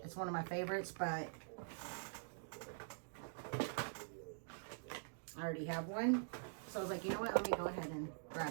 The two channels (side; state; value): left; silent; digital silence